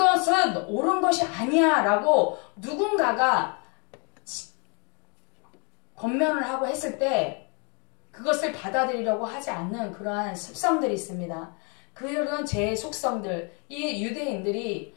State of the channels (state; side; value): quieter; right; 35.3 dB